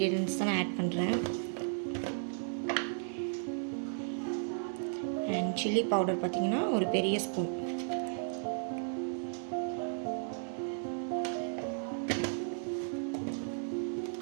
தான் நான் ஆட் பண்ணுறேன். அண்ட் சில்லி பவுடர் பார்த்திங்கன்னா ஒரு பெரிய ஸ்பூன்.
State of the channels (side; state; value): left; silent; digital silence